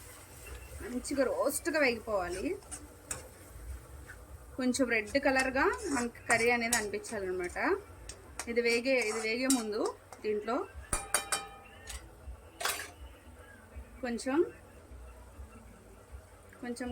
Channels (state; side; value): identical; both; correlation 1.00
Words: మంచిగా రోస్ట్గా వేగిపోవాలి. కొంచెం రెడ్ కలర్గా మనకి కర్రీ అనేది అనిపించాలన్నమాట. ఇది వేగే ముందు దీంట్లో కొంచెం